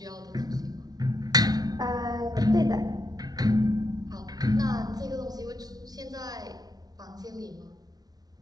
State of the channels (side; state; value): left; late; 0.19 ms